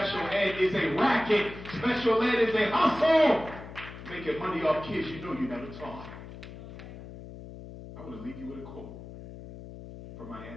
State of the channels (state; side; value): noise; left; hum, 14 dB below the sound